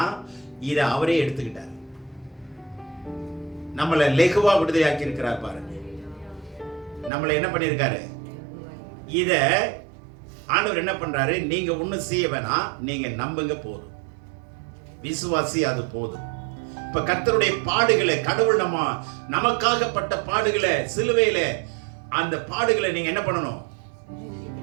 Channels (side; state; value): left; drops out; at 7.1 s